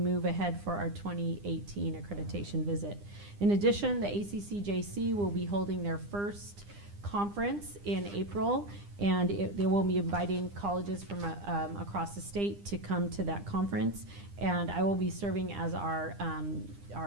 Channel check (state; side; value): late; left; 9.9 ms